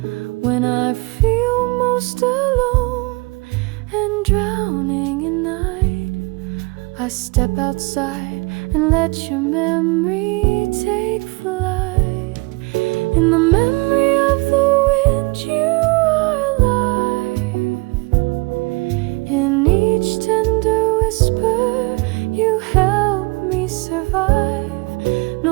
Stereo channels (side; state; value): left; quieter; 27.1 dB